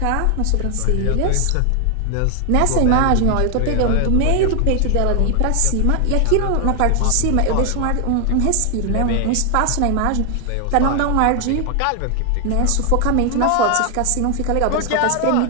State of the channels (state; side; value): different; both; correlation 0.00